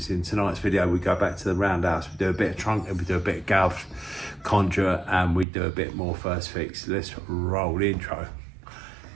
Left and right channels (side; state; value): left; drops out; at 5.5 s